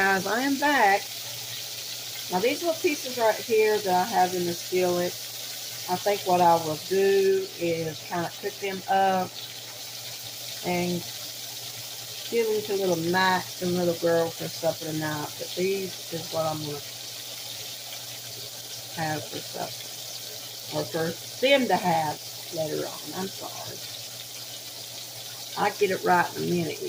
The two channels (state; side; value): identical; both; correlation 1.00